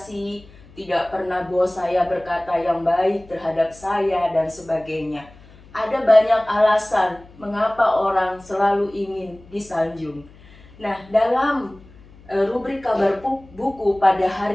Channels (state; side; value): noise; left; hum, 23 dB below the sound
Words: tidak pernah bos saya berkata yang baik terhadap saya dan sebagainya. Ada banyak alasan mengapa orang selalu ingin disanjung. Nah, dalam rubrik kabar buku pada